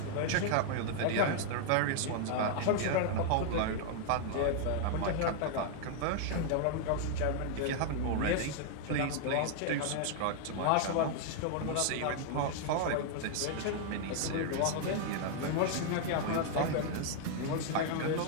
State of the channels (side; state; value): both; different; correlation 0.00